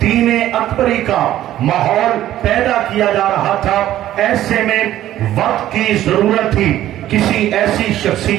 دین اکبری کا ماحول پیدا کیا جا رہا تھا۔ ایسے میں وقت کی ضرورت تھی کسی ایسی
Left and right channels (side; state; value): left; quieter; 13.1 dB